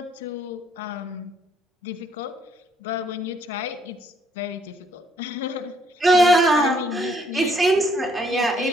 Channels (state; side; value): normal; both; correlation 0.67